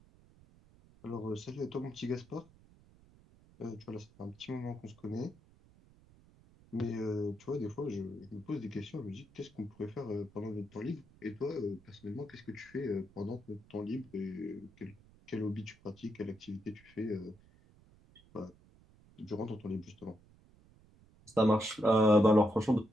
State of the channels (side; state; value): right; noise; rumble, 26 dB below the sound